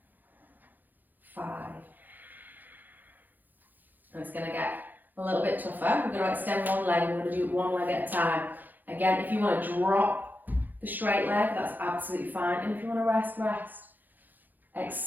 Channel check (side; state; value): left; late; 0.086 ms